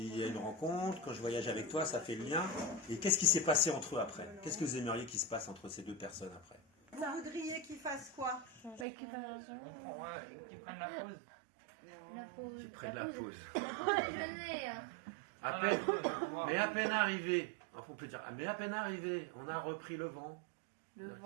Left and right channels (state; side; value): drops out; left; at 8.8 s